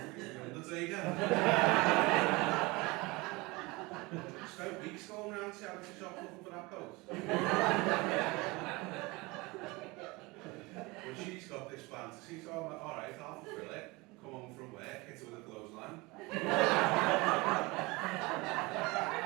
Undertaker. I spent weeks going around charity shops looking for that coat. But she's got this fantasy, so I'm like, "Alright, I'll fulfill it. Come home from work, hit her with a clothesline.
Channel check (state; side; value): quieter; left; 24.0 dB